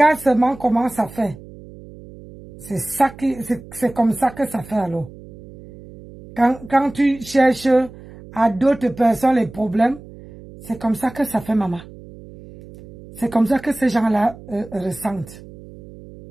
seulement comment ça fait. C'est comme ça que ça fait alors. Quand tu cherches à d'autres personnes les problèmes, c'est comme ça que ça fait, maman. C'est comme ça que ces gens-là ressentent.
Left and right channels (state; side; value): noise; right; hum, 18 dB below the sound